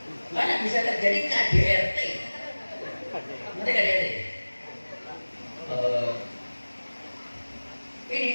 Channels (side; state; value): both; inverted; correlation -1.00